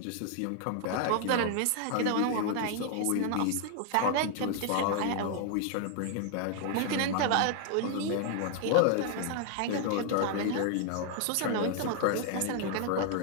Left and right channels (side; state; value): both; different; correlation 0.00